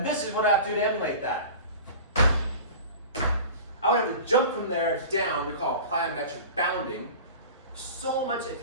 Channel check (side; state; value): both; inverted; correlation -0.37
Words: this is what I have to do to emulate that. I would have to jump from there down, we call it plyometric bounding. So much, if